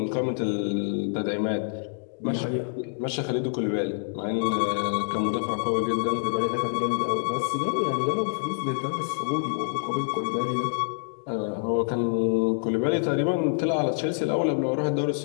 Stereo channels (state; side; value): silent; right; digital silence